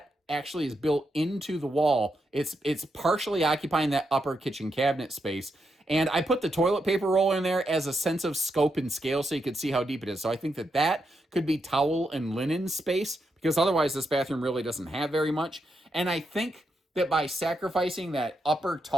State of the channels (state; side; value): normal; both; correlation 0.83